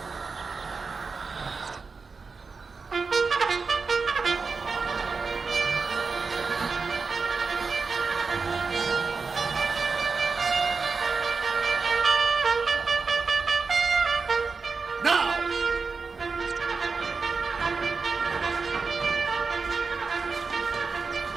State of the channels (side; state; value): left; quieter; 4.6 dB